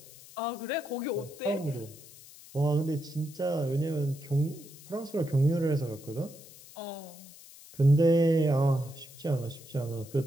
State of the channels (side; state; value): left; noise; hiss, 19 dB below the sound